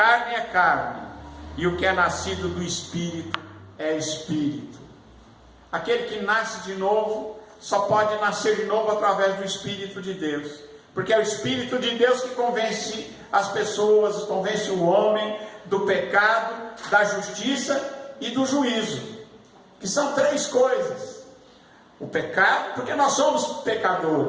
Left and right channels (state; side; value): identical; both; correlation 1.00